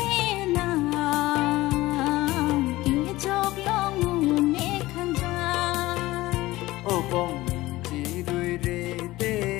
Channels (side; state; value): right; quieter; 18.2 dB